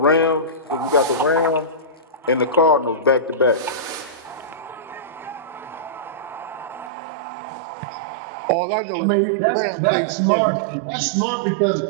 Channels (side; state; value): left; drops out; at 6.9 s